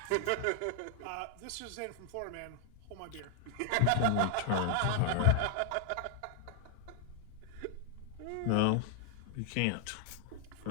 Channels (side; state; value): both; different; correlation 0.00